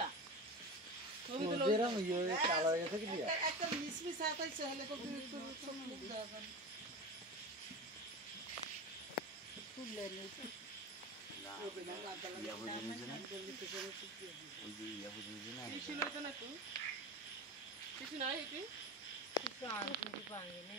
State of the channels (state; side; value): normal; both; correlation 0.27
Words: ছবি তুলে যেরকম ইয়ে কালো হয়ে গেছে কি দিয়া একটা মিসমিস আতাইছে হলে তো সব মুখ দেওয়া যাবে তুলে নিতে না ইয়া বুঝে নিছে না ওই যে ইয়া বুঝে নিছে না কিছু লইতো না তো কিছু নাই এটি কিছু আনতে পাঙ্গে